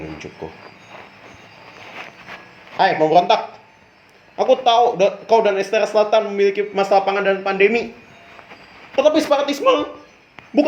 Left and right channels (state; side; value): identical; both; correlation 1.00